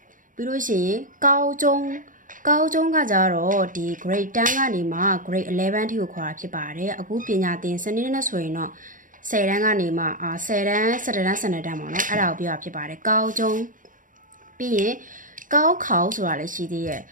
ပြီးလို့ရှိရင်高中ကကြတော့ဒီ grade 10ကနေမှ grade 11ထိကိုခေါ်တာဖြစ်ပါတယ်အခုပညာသင်စနစ်နဲ့ဆိုရင်တော့10တန်းကနေမှ10တန်း17တန်း12တန်းပေါ့နော်အဲ့ဒါကိုပြောတာဖြစ်ပါတယ်高中ပြီးရင်高考ဆိုတာလည်းရှိသေးရဲ့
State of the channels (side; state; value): left; late; 0.39 ms